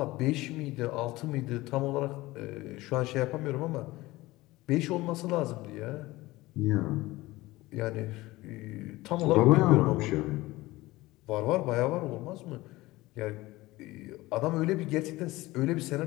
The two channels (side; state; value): right; quieter; 19.3 dB